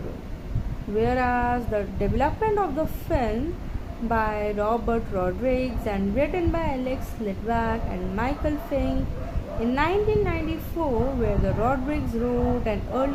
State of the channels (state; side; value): identical; both; correlation 1.00